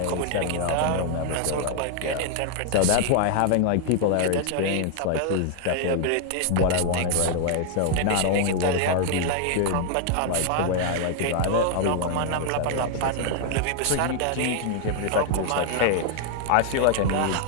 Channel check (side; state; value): both; different; correlation 0.00